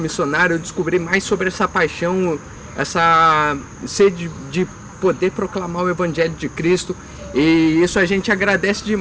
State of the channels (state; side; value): identical; both; correlation 1.00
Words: missionário, eu descobri mais sobre essa paixão, essa sede de poder proclamar o Evangelho de Cristo, e isso a gente agradece